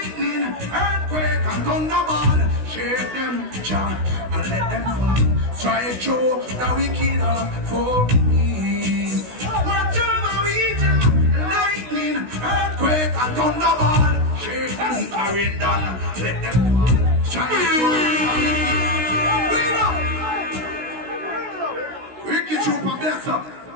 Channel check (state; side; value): late; left; 16 ms